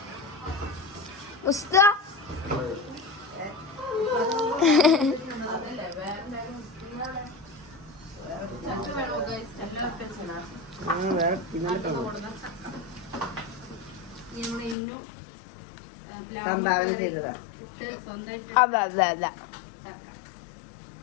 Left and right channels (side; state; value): right; drops out; at 14.8 s